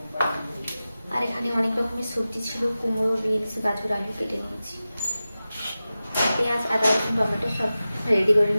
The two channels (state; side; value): inverted; both; correlation -0.95